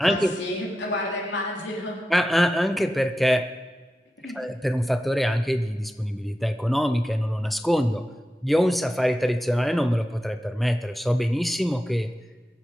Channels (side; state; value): both; normal; correlation 0.91